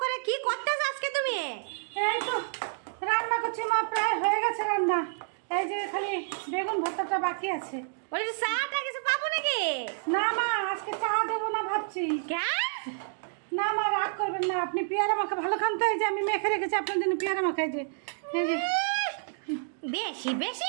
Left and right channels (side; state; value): left; silent; digital silence